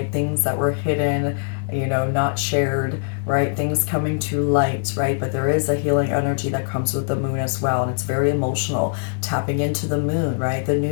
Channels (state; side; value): silent; right; digital silence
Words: things that were hidden, you know, not shared, right? Things coming to light, right? But there is a healing energy that comes with the moon as well, and it's very emotional. Tapping into the moon, right? The